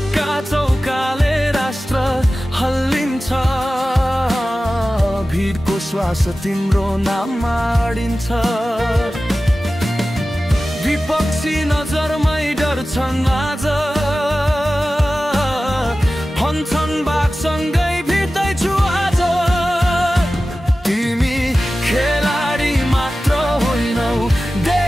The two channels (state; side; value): normal; both; correlation 0.95